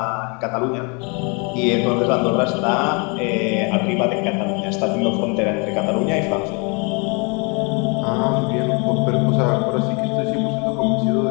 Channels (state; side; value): quieter; right; 32.9 dB